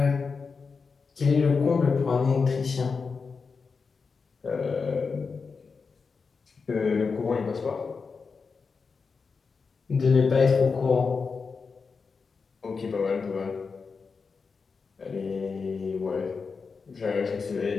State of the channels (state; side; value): quieter; right; 5.0 dB